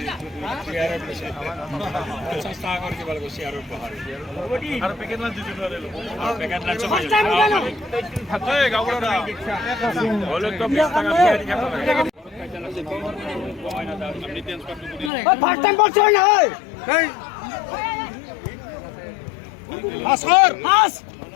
50 টাকা করে কিবা লাগে শেয়ার উপহার আর প্যাকেট না দিতে পারে আর প্যাকেট না চলে থাকে গাবড়া হলো তো 20 টাকা দিয়ে দিতে পারে ফার্স্ট টাইম বলছ না এই আসর আস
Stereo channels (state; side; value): drops out; right; at 15.1 s